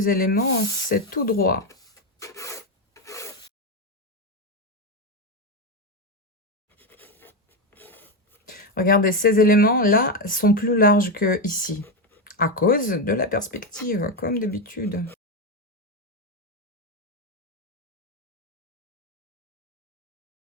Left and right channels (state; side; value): normal; both; correlation 0.10